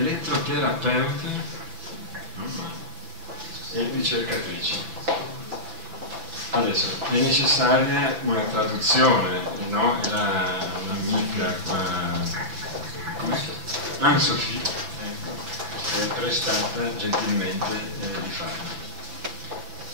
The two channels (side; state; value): left; late; 6.0 ms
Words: e ricercatrice. Adesso è necessaria una traduzione, no? È un'amica qua, Anne-Sophie, ecco, che è prestata gentilmente di farlo.